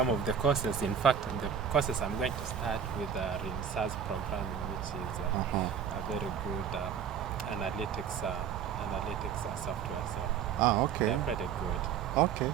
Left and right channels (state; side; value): quieter; left; 7.7 dB